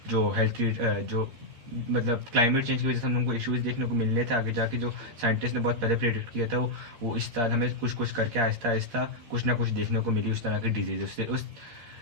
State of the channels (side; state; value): left; late; 13 ms